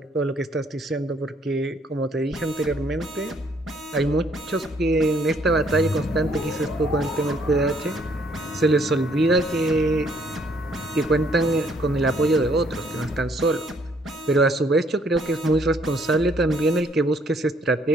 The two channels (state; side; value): normal; both; correlation 0.65